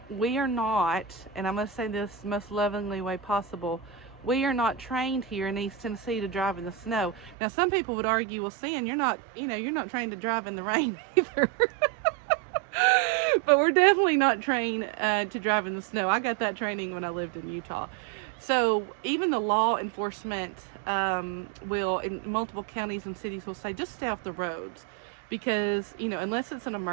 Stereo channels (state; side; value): drops out; left; at 7.4 s